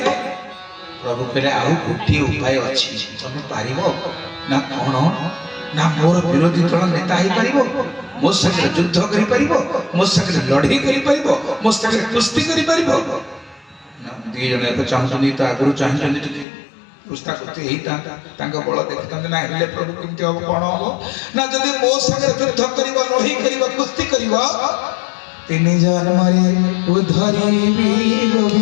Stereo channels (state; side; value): drops out; right; at 16.4 s